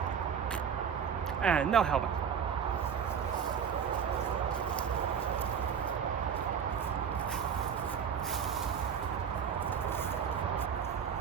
And no helmet.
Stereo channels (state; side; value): quieter; left; 7.4 dB